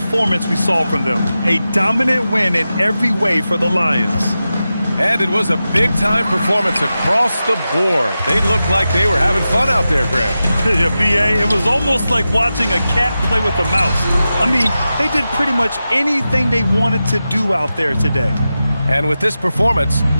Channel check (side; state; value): both; inverted; correlation -0.92